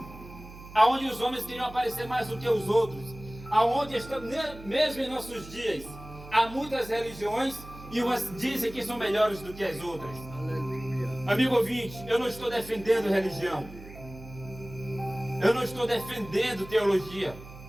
aonde os homens queriam aparecer mais do que os outros, aonde mesmo em nossos dias há muitas religiões e umas dizem que são melhores do que as outras. Aleluia. Amigo ouvinte, eu não estou defendendo religião, eu não estou defendendo teologia,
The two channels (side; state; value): right; noise; hum, 16 dB below the sound